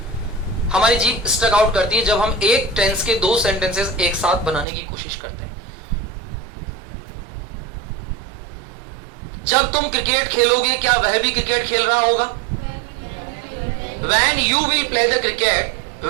हमारी जीभ स्टक आउट करती है जब हम एक टेंस के दो सेंटेंसेस एक साथ बनाने की कोशिश करते हैं। जब तुम क्रिकेट खेलोगे क्या वह भी क्रिकेट खेल रहा होगा? When you will play the cricket,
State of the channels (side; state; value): left; drops out; at 4.7 s